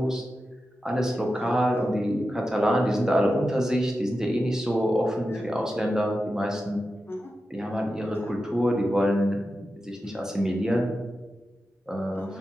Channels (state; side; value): normal; both; correlation 0.91